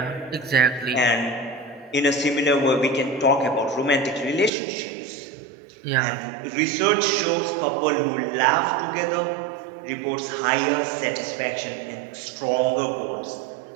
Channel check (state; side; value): drops out; left; at 4.5 s